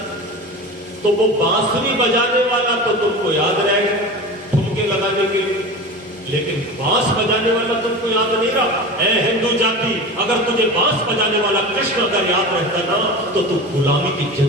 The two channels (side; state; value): both; normal; correlation 0.30